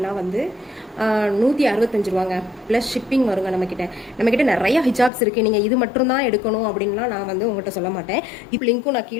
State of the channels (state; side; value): drops out; right; at 5.1 s